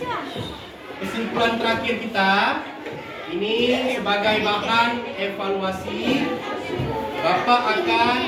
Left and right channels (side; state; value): both; identical; correlation 1.00